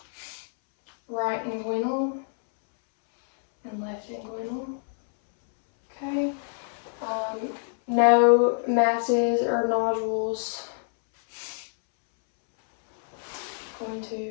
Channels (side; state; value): right; silent; 61 dB below the other